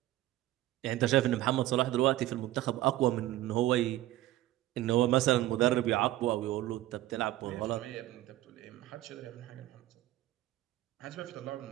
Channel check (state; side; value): quieter; left; 15.3 dB